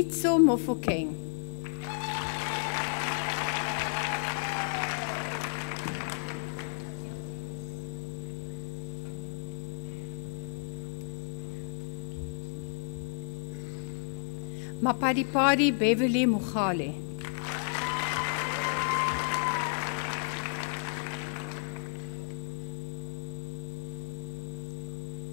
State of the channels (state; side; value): silent; right; digital silence